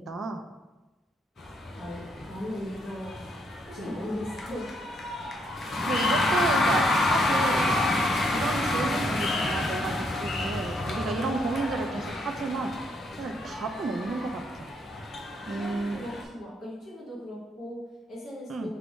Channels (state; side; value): normal; both; correlation 0.73